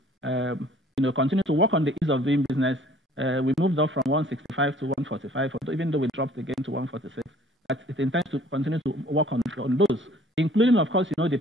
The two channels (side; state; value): both; normal; correlation 0.54